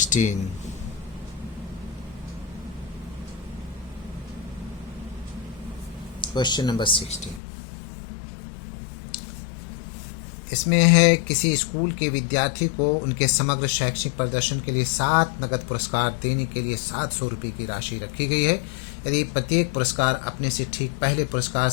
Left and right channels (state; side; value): drops out; right; at 7.4 s